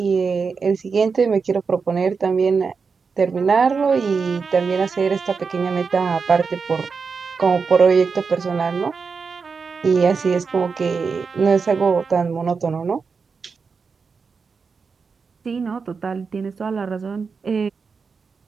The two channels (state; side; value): quieter; left; 5.2 dB